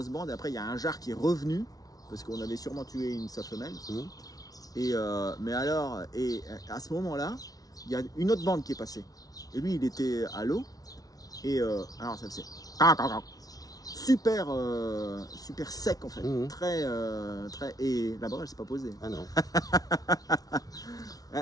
bande, après il y a un jarre qui est revenu, parce qu'on avait sûrement tué une sa femelle. Mais alors, à ce moment-là, il y a une autre bande qui est passée. Et lui, il était à l'eau. Et alors, ça faisait super, super sec en fait. Très. Et là-bas, elle s'est pas posée. Ah non.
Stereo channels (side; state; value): right; late; 0.18 ms